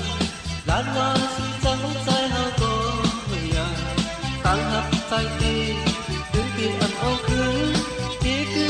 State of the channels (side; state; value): both; identical; correlation 1.00